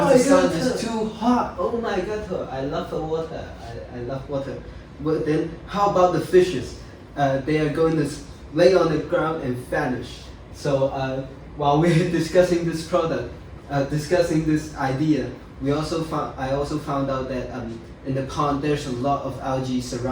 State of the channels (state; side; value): identical; both; correlation 1.00